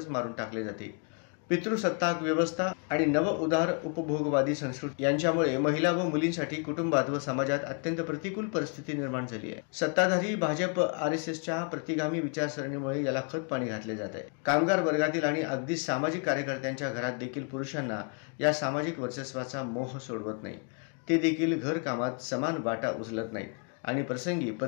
मारून टाकले जाते। पितृसत्ताक व्यवस्था आणि नव उदार उपभोगवादी संस्कृती यांच्यामुळे महिला व मुलींसाठी कुटुंबात व समाजात अत्यंत प्रतिकूल परिस्थिती निर्माण झाली आहे। सत्ताधारी भाजप आरएसएसच्या प्रतिगामी विचारसरणीमुळे याला खत पाणी घातले जात आहे। कामगार वर्गातील आणि अगदी सामाजिक कार्यकर्त्यांच्या घरात देखील पुरुषांना या सामाजिक वर्चस्वाचा मोह सोडवत नाही। ते देखील घर कामात समान वाटा उचलत नाहीत आणि प्रसंगी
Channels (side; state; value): right; quieter; 38.5 dB